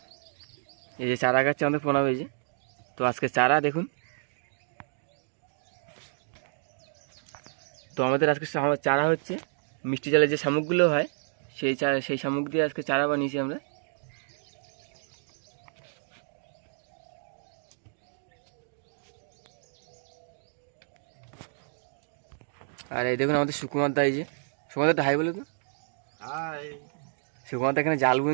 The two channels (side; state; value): left; silent; digital silence